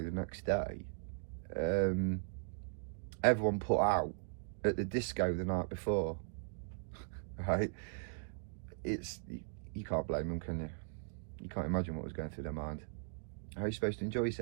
the next day, everyone put out at the disco the night before. Right? You can't blame them, can you? You can't imagine what was going through their mind. How are you supposed to enjoy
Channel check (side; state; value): left; silent; digital silence